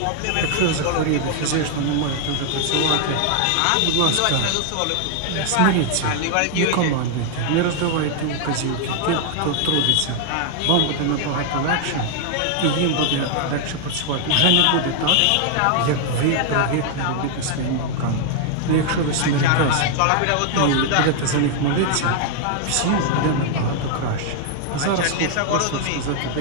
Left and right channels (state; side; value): different; both; correlation 0.00